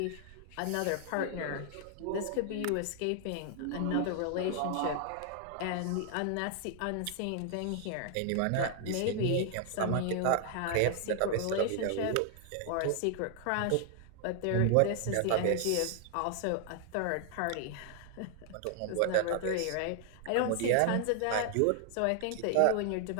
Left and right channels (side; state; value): both; different; correlation 0.00